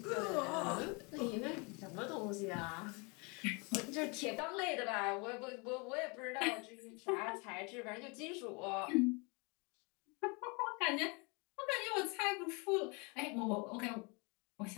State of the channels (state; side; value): quieter; right; 30.4 dB